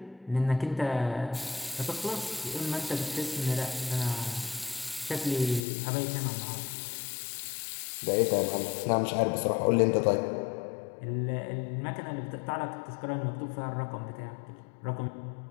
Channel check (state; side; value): drops out; right; at 5.6 s